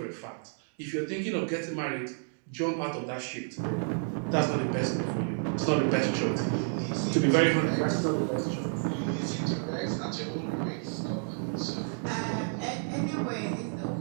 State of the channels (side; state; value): left; silent; 57 dB below the other